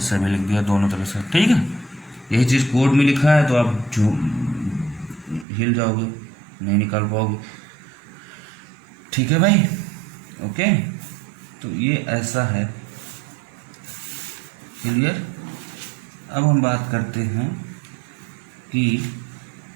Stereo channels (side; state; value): left; drops out; at 5.5 s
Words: भी लिख दिया, दोनों तरह से। ठीक है, यही चीज़ कोड में लिखा है तो आप हिल जाओगे, नहीं निकाल पाओगे। ठीक है भाई, ओके। तो ये ऐसा है, क्लियर। अब हम बात करते हैं कि